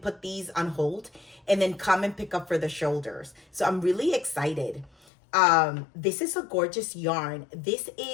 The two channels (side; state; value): right; drops out; at 4.9 s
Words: these on hold and then come and pick up for the shoulders. So I'm really excited. This is a gorgeous yarn. This